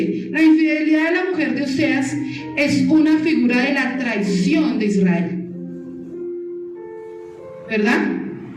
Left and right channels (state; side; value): identical; both; correlation 1.00